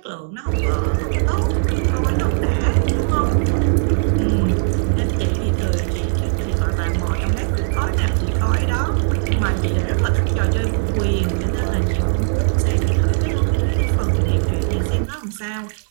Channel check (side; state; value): left; silent; 66 dB below the other